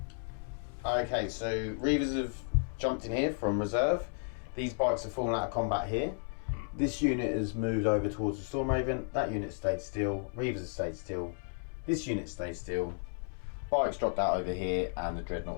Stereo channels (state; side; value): silent; right; 56 dB below the other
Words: Okay, so Reavers have jumped in here from reserve. These bikes have fallen out of combat here. This unit has moved over towards the Storm Raven. That unit stayed still. Reavers have stayed still. This unit stayed still. Bikes dropped out over here, and the